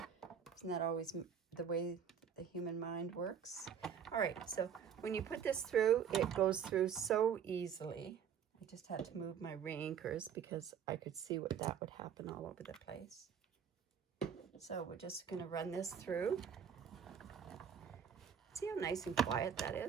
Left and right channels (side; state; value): left; quieter; 7.8 dB